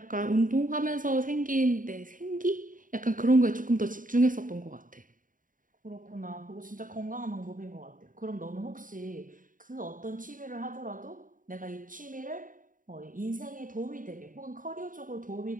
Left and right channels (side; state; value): left; late; 0.39 ms